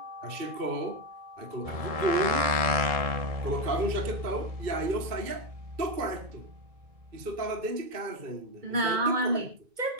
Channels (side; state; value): left; late; 1.7 ms